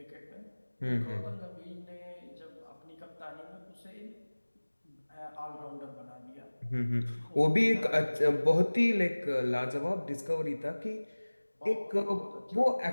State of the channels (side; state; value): both; inverted; correlation -1.00